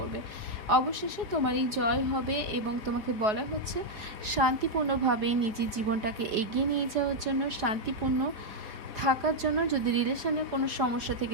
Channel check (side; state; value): left; late; 4.8 ms